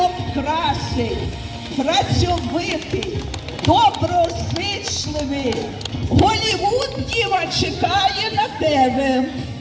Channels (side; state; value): both; identical; correlation 1.00